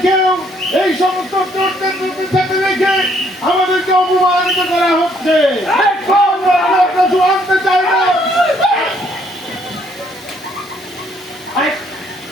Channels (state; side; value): normal; both; correlation 0.67